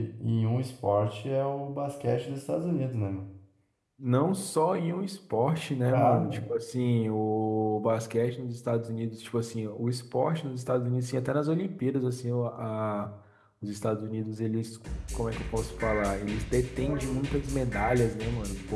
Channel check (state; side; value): identical; both; correlation 1.00